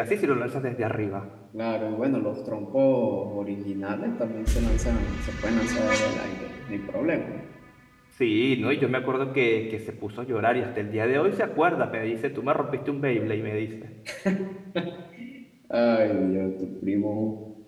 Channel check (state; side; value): identical; both; correlation 1.00